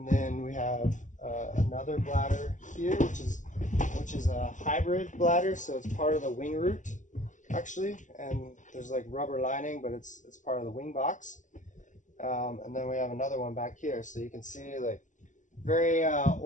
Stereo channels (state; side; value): late; right; 0.36 ms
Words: then we have another bladder here, which is a hybrid bladder. So it's part of the wing root, actually, and there's like rubber lining, but it's part of the wing box. And then we have another one back here, so you can see like very